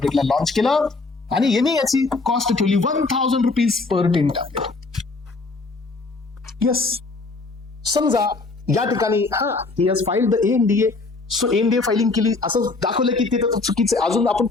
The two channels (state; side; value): quieter; right; 3.7 dB